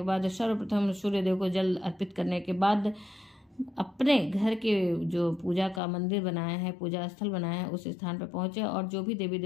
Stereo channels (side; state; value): right; drops out; at 5.8 s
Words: बाद सर्वप्रथम सूर्य देव को जल अर्पित करने के बाद अपने घर के जो पूजा का मंदिर बनाया है, पूजा स्थल बनाया है, उस स्थान पर पहुंचे और जो भी देवी